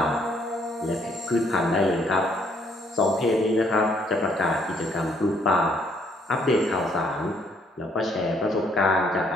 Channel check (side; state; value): both; normal; correlation 0.67